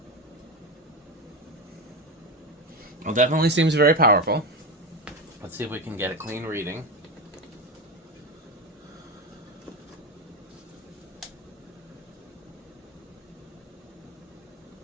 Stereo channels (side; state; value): both; normal; correlation 0.18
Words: Well, definitely seems very powerful. Let's see if we can get a clean reading.